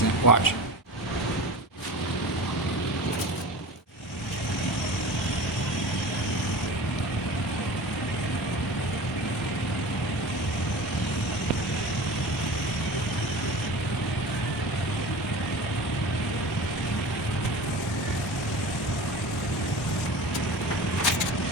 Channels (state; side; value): normal; both; correlation 0.34